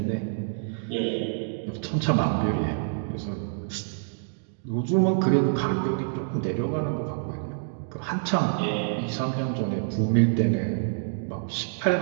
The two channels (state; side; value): silent; left; digital silence